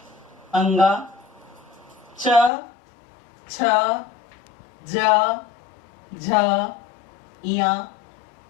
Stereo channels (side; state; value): right; drops out; at 2.5 s